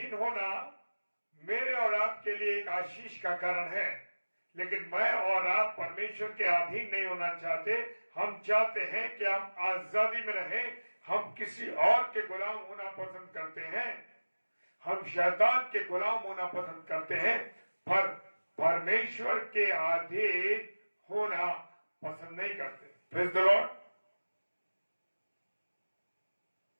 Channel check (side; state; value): both; inverted; correlation -1.00